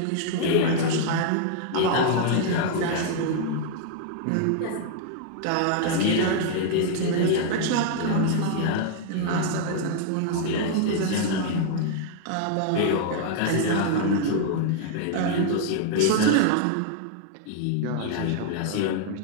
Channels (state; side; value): different; both; correlation -0.01